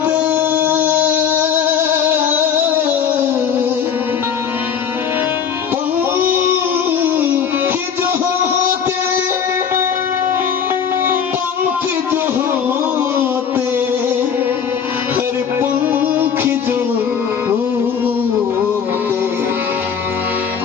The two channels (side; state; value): right; quieter; 7.4 dB